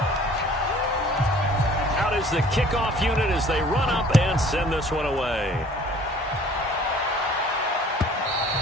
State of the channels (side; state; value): both; normal; correlation 0.52